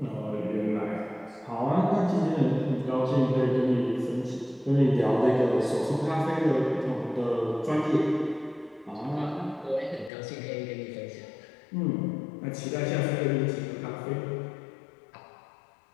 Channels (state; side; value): drops out; right; at 10.1 s